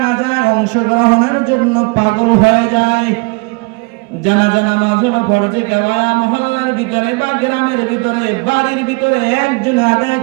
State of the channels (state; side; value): quieter; left; 28.9 dB